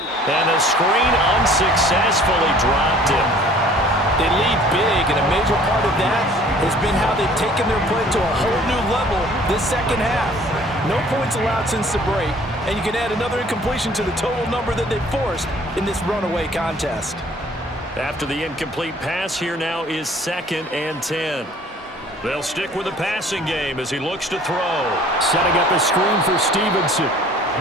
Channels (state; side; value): normal; both; correlation 0.53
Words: And the screen unsuccessfully dropped him. They lead big, and a major part of that has been how they've taken their play to a whole new level this 2nd half. No points allowed since the break, and you can add another incompletion to the total number that they've forced in this runaway contest. After the incomplete pass, here now is 2nd and 10. They'll stick with the passing game as he looks to throw. Setting up a screen for Stevenson.